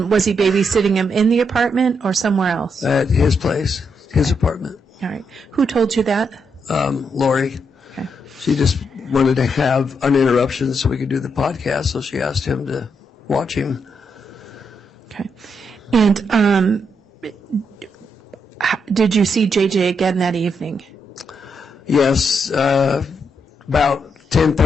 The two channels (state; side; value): normal; both; correlation 0.80